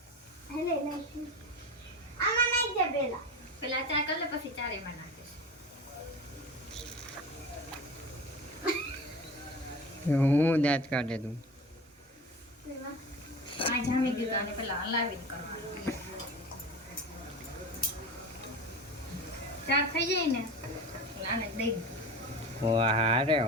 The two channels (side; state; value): both; normal; correlation 0.31